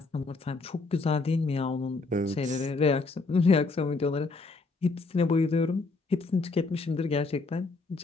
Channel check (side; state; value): right; quieter; 3.8 dB